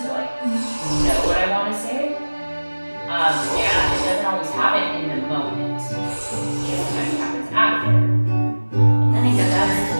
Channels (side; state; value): both; inverted; correlation -1.00